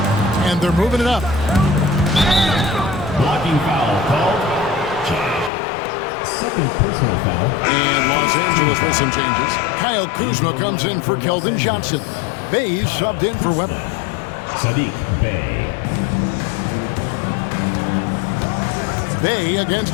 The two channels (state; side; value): drops out; right; at 5.5 s